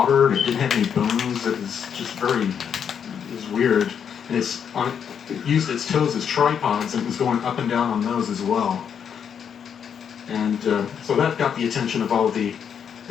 and it didn't have any bones. It was just it was weird. And it used its toes as tripods, and it was going up and down on those as well. And so that got the attention of all the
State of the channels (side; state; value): right; quieter; 7.7 dB